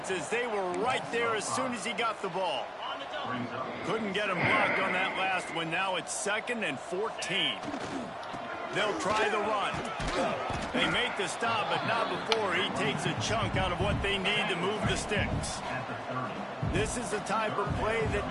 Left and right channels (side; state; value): both; identical; correlation 1.00